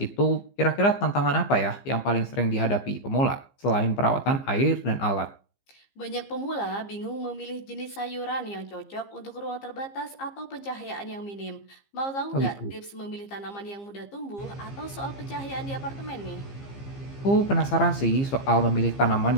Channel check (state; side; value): late; right; 15 ms